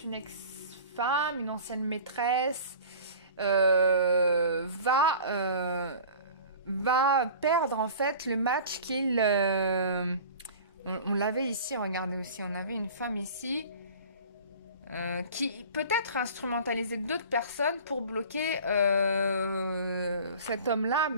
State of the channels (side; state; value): both; inverted; correlation -0.41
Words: une ex-femme, une ancienne maîtresse, va perdre en fait le match qu'il... on l'avait ici, regardez aussi, on avait une femme ici qui peut-être instrumentalisait d'autres personnes pour bloquer cet homme-là,